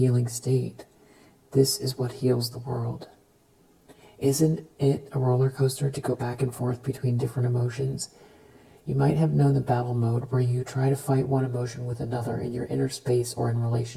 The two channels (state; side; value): identical; both; correlation 1.00